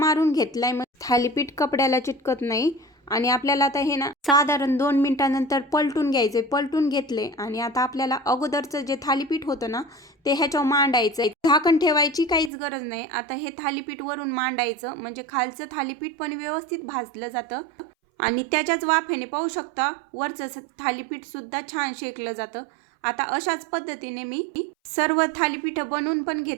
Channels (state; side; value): drops out; left; at 12.5 s